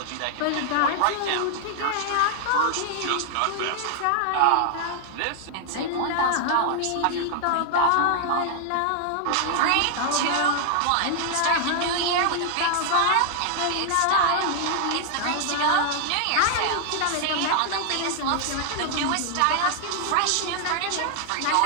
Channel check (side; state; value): both; different; correlation 0.00